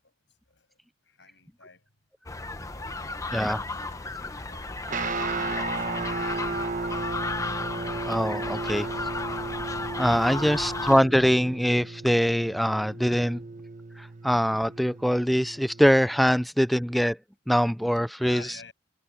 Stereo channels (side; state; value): both; normal; correlation 0.89